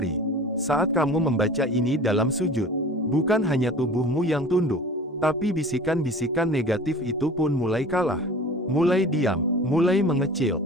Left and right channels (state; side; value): normal; both; correlation 0.40